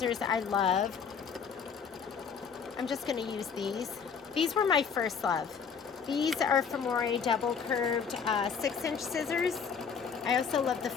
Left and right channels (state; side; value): quieter; right; 6.5 dB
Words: I love. I'm just going to use these. These were my first love. These are Femore double curved 6-inch scissors. I also love the